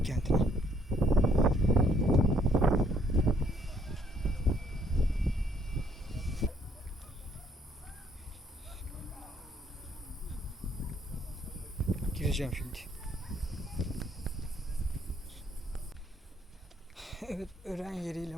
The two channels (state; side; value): normal; both; correlation 0.66